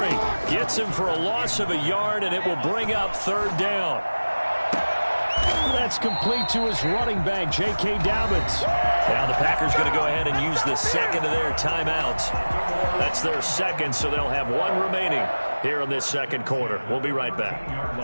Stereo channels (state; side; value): inverted; both; correlation -1.00